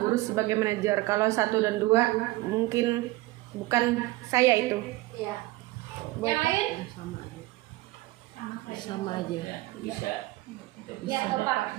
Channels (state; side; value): quieter; left; 19.3 dB